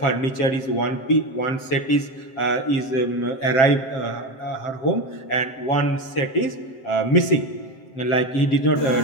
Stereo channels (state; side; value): late; right; 7.6 ms